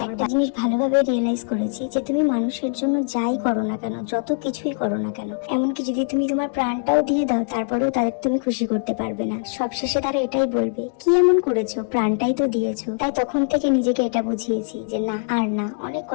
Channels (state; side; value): silent; right; 64 dB below the other